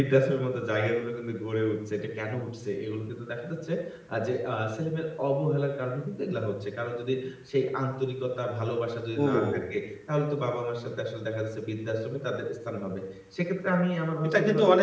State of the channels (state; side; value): identical; both; correlation 1.00